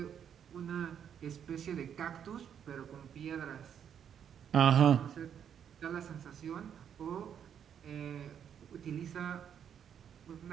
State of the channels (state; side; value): quieter; left; 8.5 dB